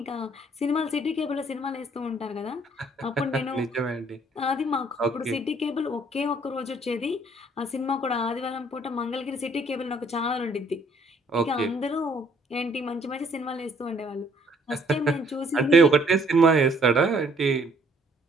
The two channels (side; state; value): both; normal; correlation 0.63